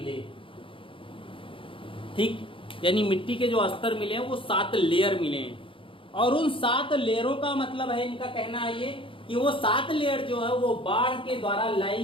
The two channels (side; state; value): right; late; 0.25 ms